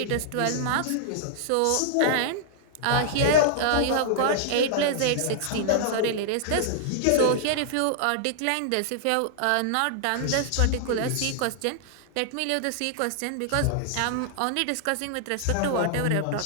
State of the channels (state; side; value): different; both; correlation -0.01